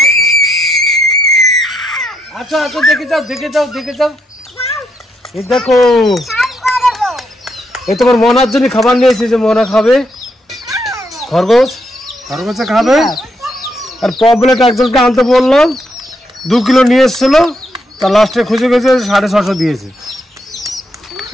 আচ্ছা আচ্ছা দেখে যাও এই দেখো এই তোমার মনার জন্য খাবার নিয়েছি যে মনা খাবে খরগোশে খাবে আর পমপ্লেট একজনকে আনতে বললাম 2 কিলো নিয়ে এসেছিল তা লাস্টে খুঁজে গেছে 650 দিয়েছে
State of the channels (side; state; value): both; normal; correlation 0.78